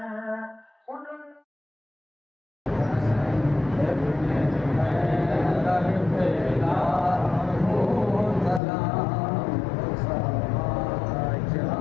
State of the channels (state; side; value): drops out; right; at 8.6 s